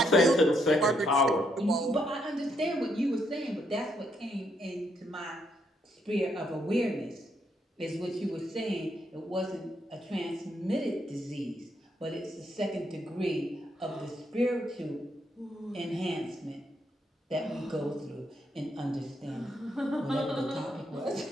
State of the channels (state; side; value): normal; both; correlation 0.75